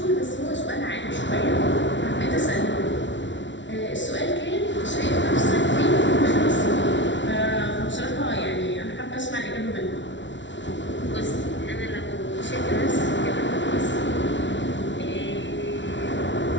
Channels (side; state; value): right; late; 0.54 ms